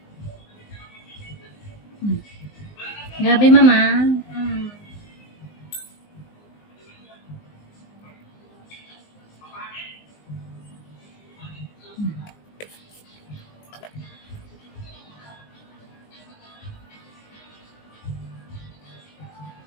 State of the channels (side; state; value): right; late; 19 ms